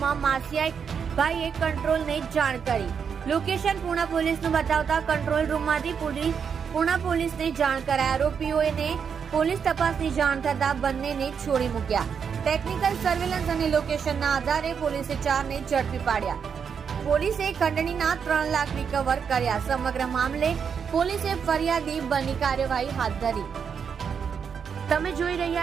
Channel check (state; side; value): quieter; left; 6.8 dB